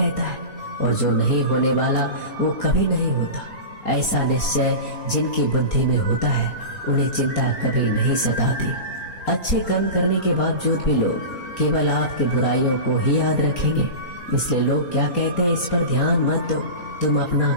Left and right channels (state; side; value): late; right; 4.3 ms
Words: है और जो नहीं होने वाला वो कभी नहीं होता। ऐसा निश्चय जिनकी बुद्धि में होता है, उन्हें चिंता कभी नहीं सताती। अच्छे कर्म करने के बावजूद भी लोग केवल आपकी बुराइयों को ही याद रखेंगे। इसलिए लोग क्या कहते हैं, इस पर ध्यान मत दो, तुम अपना